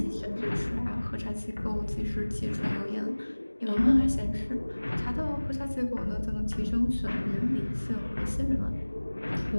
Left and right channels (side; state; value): both; inverted; correlation -1.00